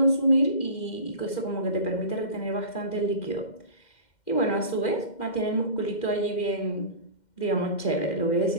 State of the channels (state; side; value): late; right; 2.1 ms